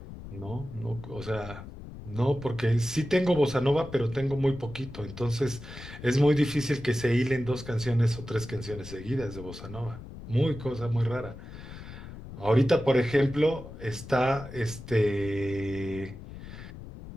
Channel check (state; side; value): noise; left; rumble, 13 dB below the sound